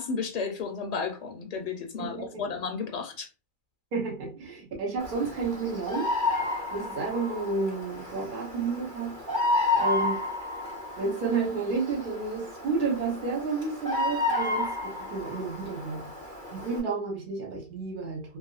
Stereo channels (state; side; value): late; left; 2.3 ms